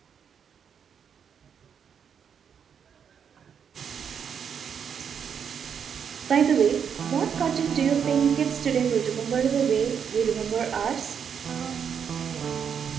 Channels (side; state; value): left; quieter; 7.5 dB